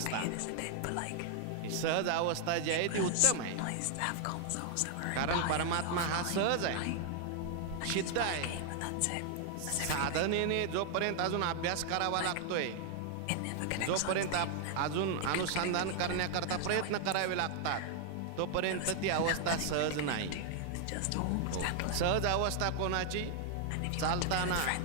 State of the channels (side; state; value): both; different; correlation 0.00